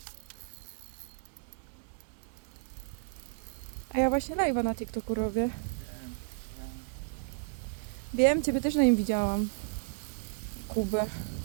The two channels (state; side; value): silent; left; 56 dB below the other